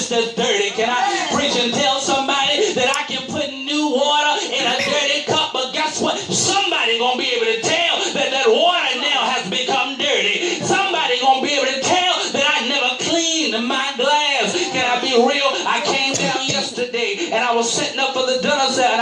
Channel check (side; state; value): both; identical; correlation 1.00